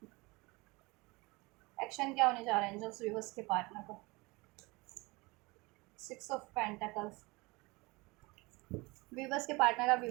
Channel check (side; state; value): left; quieter; 24.4 dB